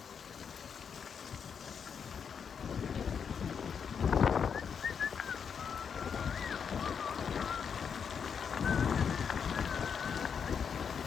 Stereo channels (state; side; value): quieter; right; 6.8 dB